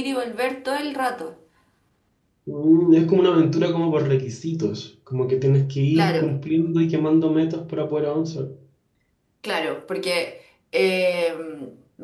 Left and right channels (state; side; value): identical; both; correlation 1.00